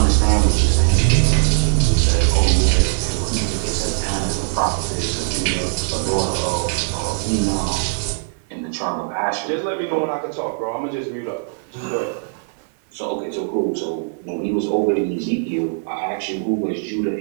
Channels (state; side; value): silent; left; 59 dB below the other